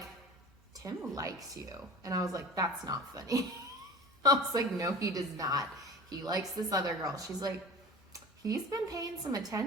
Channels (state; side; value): normal; both; correlation 0.37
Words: Tim likes you. And I was like, that's not funny. I was like, no, he does not. He likes this other girl. She's like, he's been paying some